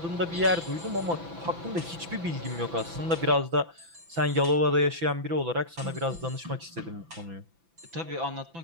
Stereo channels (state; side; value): late; left; 6.0 ms